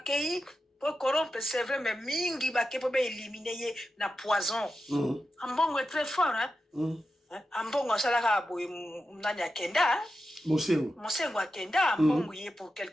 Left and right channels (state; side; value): normal; both; correlation 0.90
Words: po corrompre c'est vrai mais mingi bakei po be éliminer ye na poison ambongo est très fort hein ambongo asalaka boye nani akenda Mosengo akenda mbongo ye pour